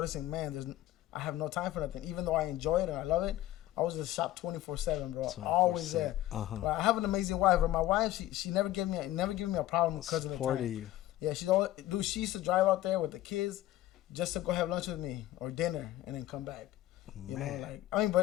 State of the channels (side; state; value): right; quieter; 15.0 dB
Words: man, I have no time for nothing. Even though I enjoy it and I love it, I was in the shop 24/7, bro. Always there. But I have an amazing wife. But my wife, she never gave me a problem because of the time. You. Yeah, she used to drive out there with the kids just to go have lunch with me or dinner and then come back.